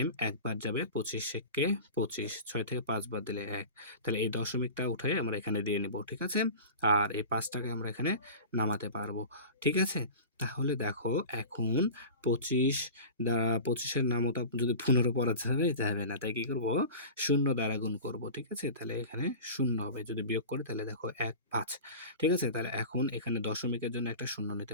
একবার যাবে 25 থেকে 25, 6 থেকে 5 বাদ দিলে 1, তাহলে এই দশমিকটা উঠে আমরা এখানে দিয়ে নিব, ঠিক আছে। আর এই 5টাকে আমরা এখানে নামাতে পারবো, ঠিক আছে। তাহলে দেখো এখন 25 দ্বারা 25-এর নামতা যদি 15 পড়া যাবে না, তাই কি করব, শূন্য দ্বারা গুণ করব, ঠিক আছে। তাহলে এখানে শূন্য হবে, যদি বিয়োগ করি তাহলে দেখো 1 5, ঠিক আছে। তাহলে এখন এখানে দশমিকের জন্য একটা শূন্য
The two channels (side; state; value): both; inverted; correlation -0.34